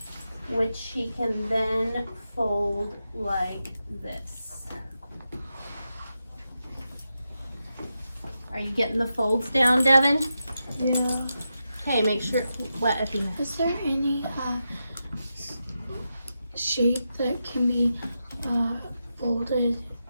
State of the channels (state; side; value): inverted; both; correlation -0.88